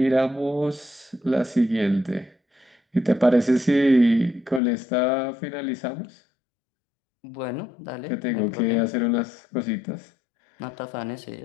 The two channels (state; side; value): drops out; right; at 4.6 s